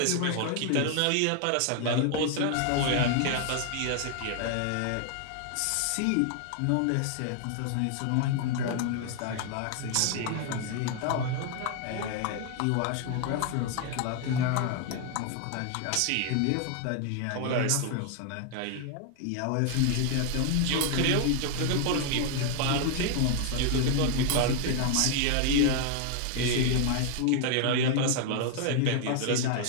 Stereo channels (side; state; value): both; different; correlation 0.00